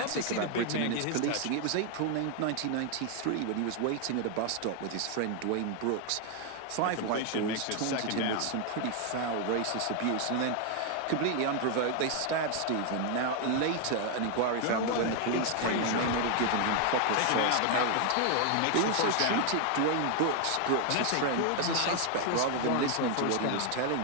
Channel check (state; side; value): different; both; correlation 0.00